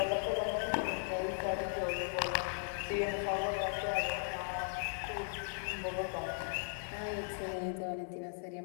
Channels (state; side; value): silent; right; digital silence